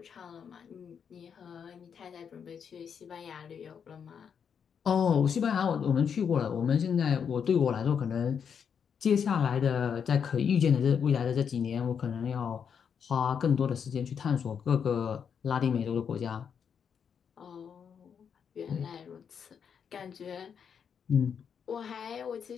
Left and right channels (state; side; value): quieter; right; 7.2 dB